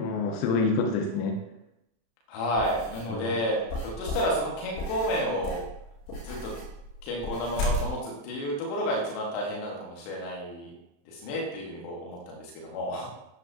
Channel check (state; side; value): late; right; 35 ms